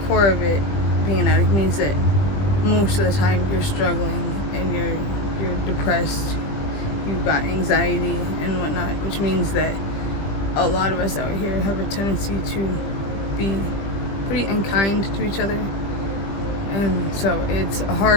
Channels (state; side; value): late; right; 20 ms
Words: of it, being an addict means that most of the time you're struggling and you're depressed, you've got anxiety and whatnot, which means that a lot of us out here have a tendency to be pretty unkind to each other. And so it's